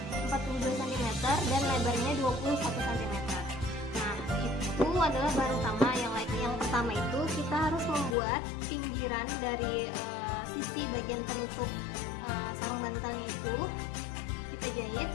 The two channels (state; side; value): drops out; right; at 8.2 s